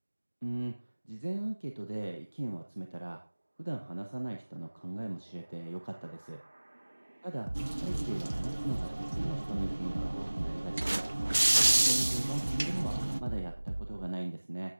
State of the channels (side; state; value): both; inverted; correlation -1.00